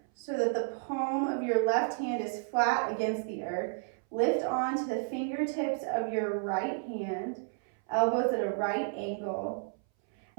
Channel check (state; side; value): silent; left; 57 dB below the other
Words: so that the palm of your left hand is flat against the earth. Lift onto the fingertips of your right hand, elbows at a right angle.